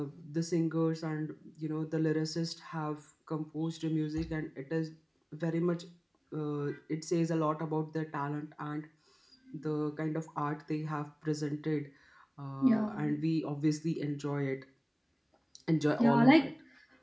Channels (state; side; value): identical; both; correlation 1.00